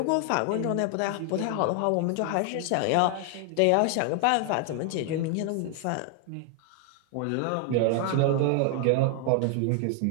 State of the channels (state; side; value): different; both; correlation 0.00